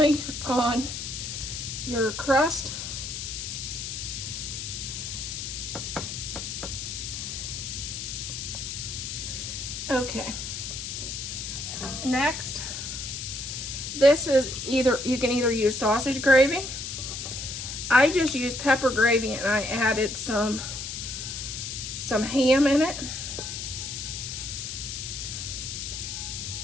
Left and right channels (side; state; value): left; noise; hiss, 6 dB below the sound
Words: on your crust. Okay. Next, this is you can either use sausage gravy. I just used pepper gravy and I added some ham in it.